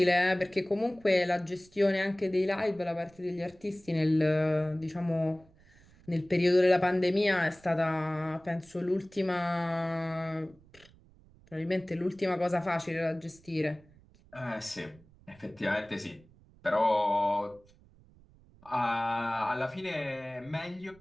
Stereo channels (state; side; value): noise; right; rumble, 27 dB below the sound